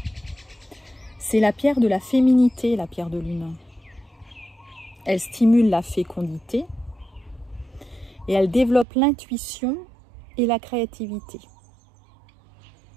C'est la pierre de la féminité, la pierre de lune. Elle stimule la fécondité et elle développe l'intuition et la créativité.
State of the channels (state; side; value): drops out; left; at 8.8 s